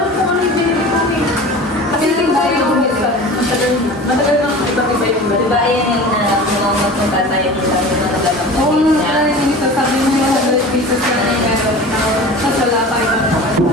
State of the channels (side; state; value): both; normal; correlation 0.37